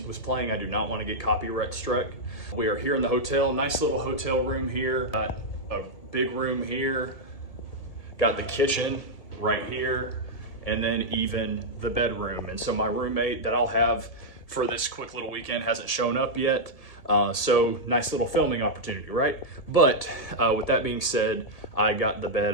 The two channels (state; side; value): late; right; 1.8 ms